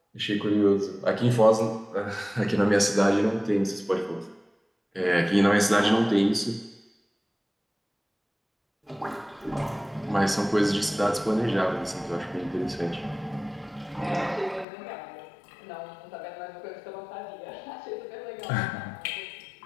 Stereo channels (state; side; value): drops out; right; at 14.7 s